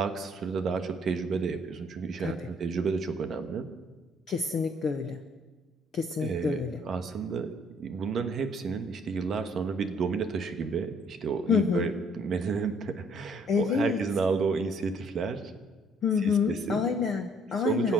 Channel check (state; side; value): normal; both; correlation 0.63